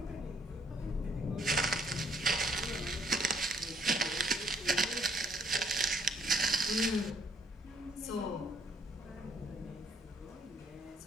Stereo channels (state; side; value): normal; both; correlation 0.66